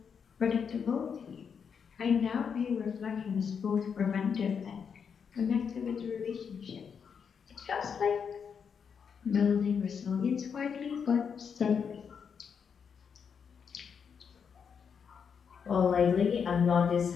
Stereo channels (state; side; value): quieter; right; 6.7 dB